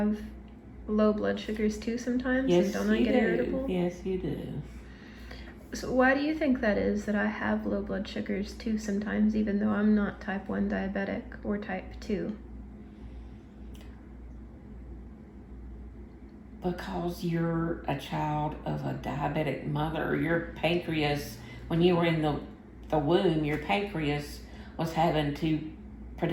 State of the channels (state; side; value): identical; both; correlation 1.00